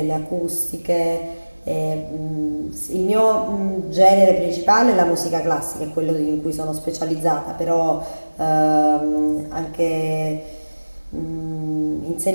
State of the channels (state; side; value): inverted; both; correlation -1.00